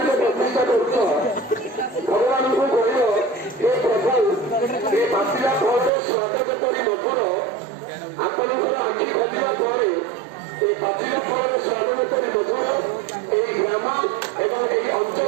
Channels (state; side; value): drops out; left; at 5.9 s